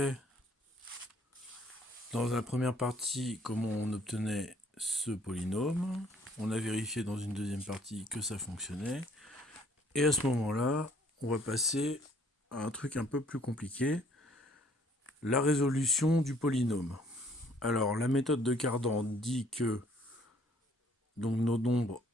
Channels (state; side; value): normal; both; correlation 0.61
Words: dans la première partie comment on obtenait ce polynôme. On a vérifié dans une deuxième partie que ça fonctionnait. Et à ce moment-là, on va passer à un truc un peu plus compliqué, la résolution du polynôme. Alors la méthode de Cardan dit que donc nos nombres